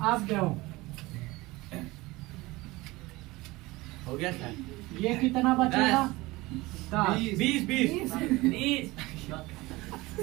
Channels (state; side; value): quieter; left; 20.9 dB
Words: अब दो, हो गया सर। ये कितना बचेगा 10 20